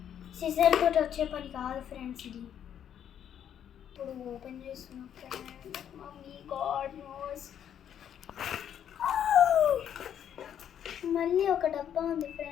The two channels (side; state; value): right; quieter; 9.4 dB